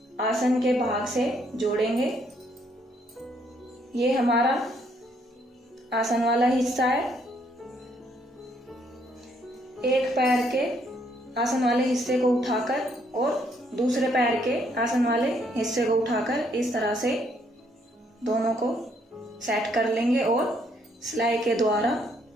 आसन के भाग से जोड़ेंगे। ये हमारा आसन वाला हिस्सा है। एक पैर के आसन वाले हिस्से को उठाकर और दूसरे पैर के आसन वाले हिस्से को उठाकर इस तरह से दोनों को सेट कर लेंगे और सिलाई के द्वारा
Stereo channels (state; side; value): normal; both; correlation 0.70